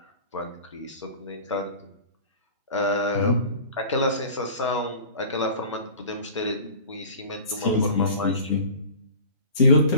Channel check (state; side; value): inverted; both; correlation -0.40